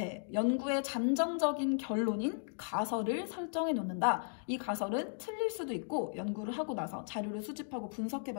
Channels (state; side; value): silent; right; digital silence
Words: 연구의 잠정적인 결론인 가설을 설정해 놓는다. 이 가설은 틀릴 수도 있고 연구를 하고 나서 자료를 수집하고 분석해